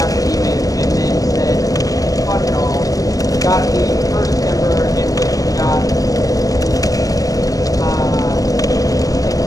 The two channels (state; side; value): late; right; 0.17 ms